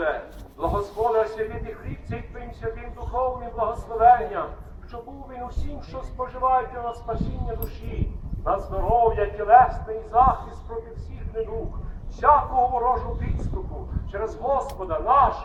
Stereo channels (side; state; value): both; identical; correlation 1.00